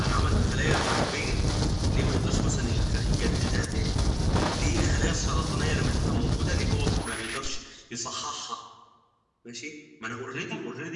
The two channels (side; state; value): both; identical; correlation 1.00